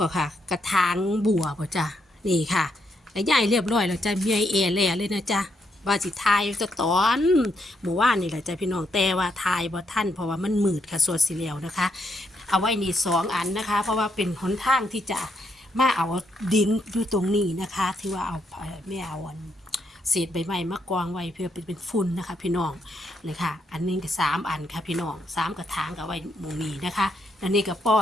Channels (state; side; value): normal; both; correlation 0.77